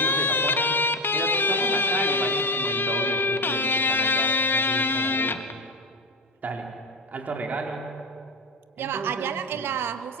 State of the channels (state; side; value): normal; both; correlation 0.18